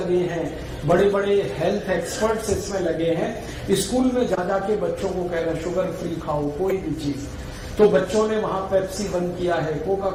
हैं, बड़े बड़े हेल्थ एक्सपर्ट्स इसमें लगे हैं। स्कूल में जा जाके बच्चों को कह रहे हैं शुगर फ्री खाओ कोई भी चीज। तो बच्चों ने वहां पेप्सी बंद किया है, कोका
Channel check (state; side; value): identical; both; correlation 1.00